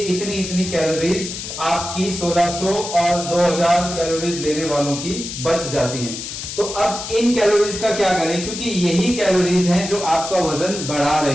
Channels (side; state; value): left; noise; hiss, 8 dB below the sound